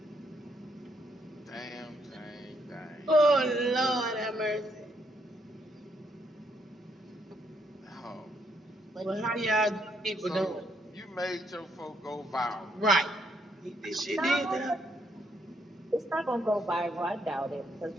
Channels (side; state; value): both; normal; correlation 0.73